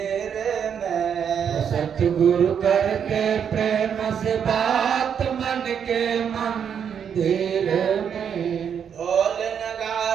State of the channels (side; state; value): left; quieter; 7.8 dB